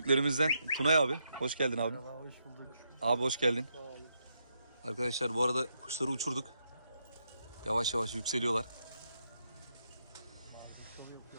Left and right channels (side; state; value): both; inverted; correlation -0.79